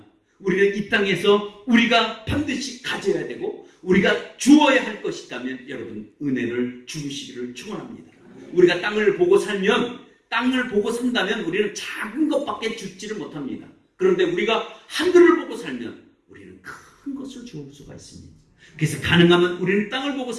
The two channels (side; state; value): both; identical; correlation 1.00